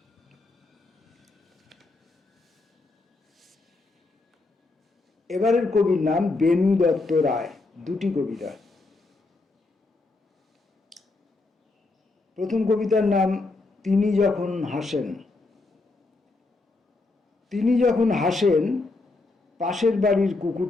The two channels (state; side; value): quieter; right; 3.4 dB